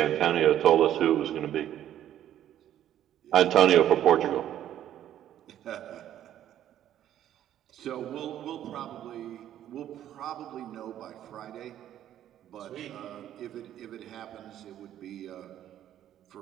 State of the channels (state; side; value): quieter; left; 11.4 dB